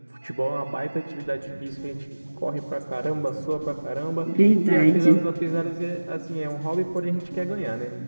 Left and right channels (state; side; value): inverted; both; correlation -1.00